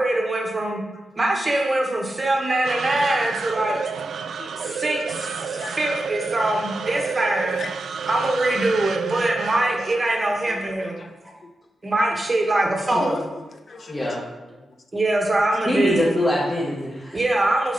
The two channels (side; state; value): both; normal; correlation 0.90